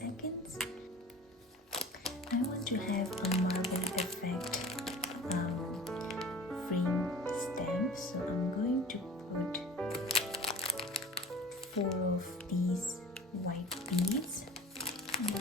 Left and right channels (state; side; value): normal; both; correlation 0.40